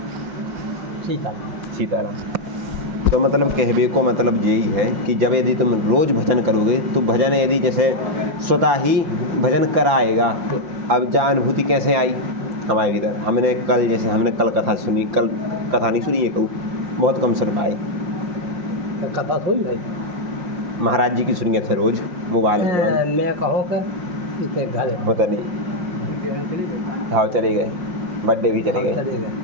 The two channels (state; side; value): late; left; 5.9 ms